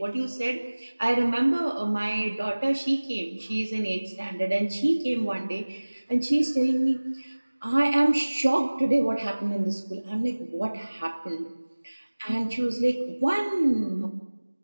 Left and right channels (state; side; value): inverted; both; correlation -1.00